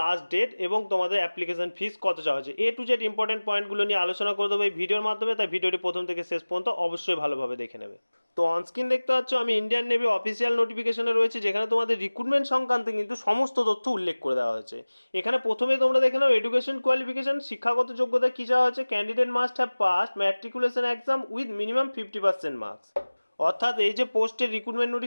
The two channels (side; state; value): both; inverted; correlation -1.00